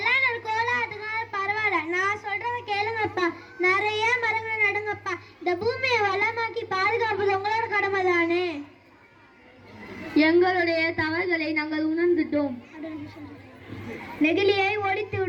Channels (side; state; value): both; identical; correlation 1.00